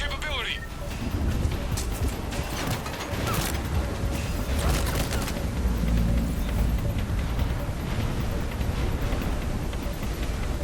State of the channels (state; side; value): identical; both; correlation 1.00